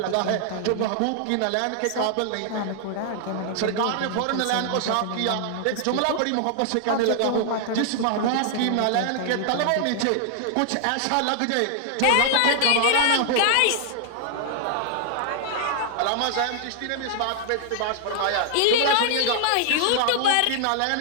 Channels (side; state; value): both; different; correlation 0.00